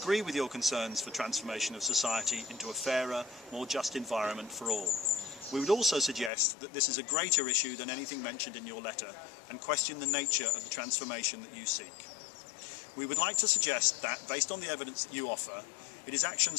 with your concerns for transformation of society into a fairer, more just environment for all. We would also suggest that this is a greater issue than anything mentioned in your letter and question the nature of the transformation that you seek. We would like to suggest that, based on the evidence that you offer, it is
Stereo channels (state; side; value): drops out; right; at 6.3 s